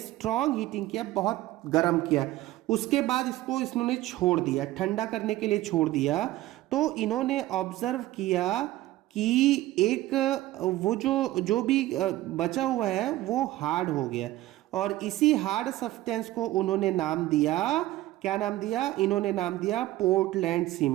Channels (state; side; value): quieter; left; 16.2 dB